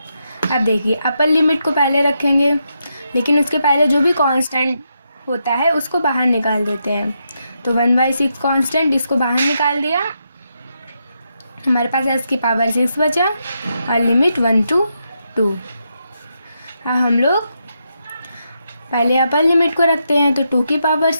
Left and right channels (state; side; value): inverted; both; correlation -0.82